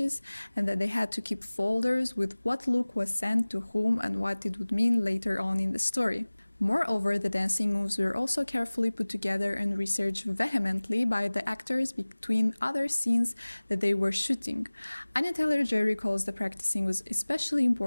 and that they had to keep folders with what look was sent to whom and what it would mean later on in the story. Moreover, the dancing moves were also carefully put together and researched vehemently by the actors between other scenes that they were shooting. Anya Taylor-Joy recalls the practicing was especially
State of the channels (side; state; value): both; inverted; correlation -1.00